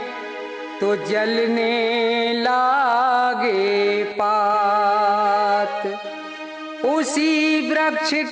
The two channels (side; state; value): both; identical; correlation 1.00